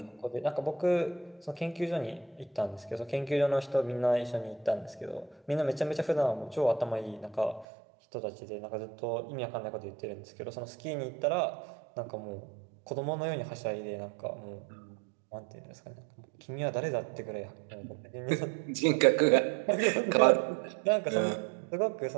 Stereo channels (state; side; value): drops out; left; at 7.7 s